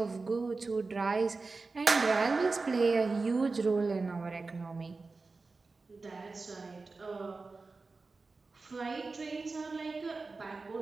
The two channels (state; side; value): quieter; left; 3.9 dB